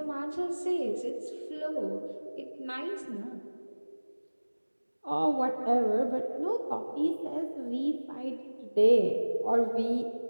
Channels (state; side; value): inverted; both; correlation -1.00